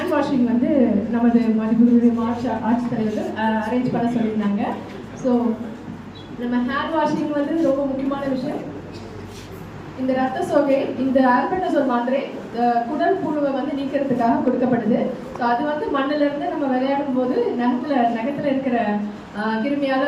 வாஷிங் வந்து நமது மதிப்புடைய ஆட்சித்தலைவர்கள் அரேஞ்ச் பண்ண சொல்லியிருந்தாங்க. ஸோ நம்ம ஹேண்ட் வாஷிங் வந்து ரொம்ப முக்கியமான விஷயம். இந்த ரத்த சோகை, இந்த ஆல்பெண்டசோல் மாத்திரை குடல் புழுவை வந்து நீக்கிறதுக்காக கொடுக்கப்படுது. ஸோ அது வந்து மண்ணிலிருந்து நம்ம விளையாடும் போது நகத்துல இருக்கிற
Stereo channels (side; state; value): both; identical; correlation 1.00